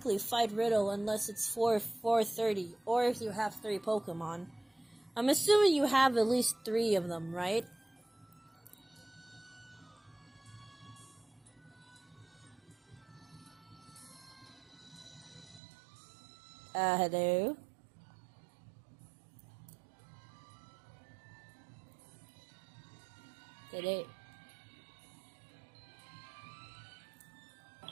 fight Riddle unless it's 4:30, or if you have 3 Pokemon. I'm assuming you have at least 3 of them, right? Hello? Again.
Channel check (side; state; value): left; drops out; at 15.6 s